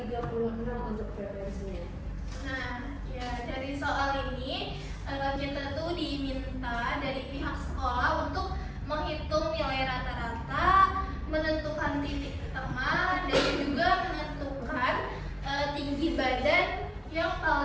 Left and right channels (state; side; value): identical; both; correlation 1.00